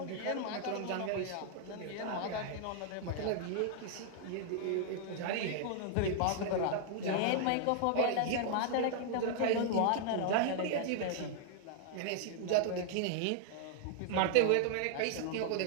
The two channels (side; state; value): both; different; correlation 0.00